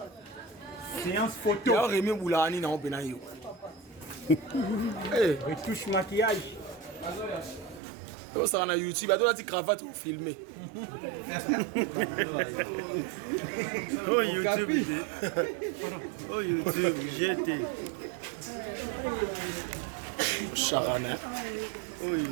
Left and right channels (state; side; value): drops out; left; at 7.8 s